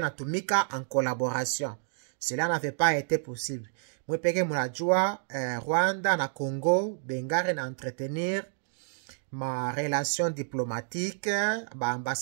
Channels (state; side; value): silent; left; digital silence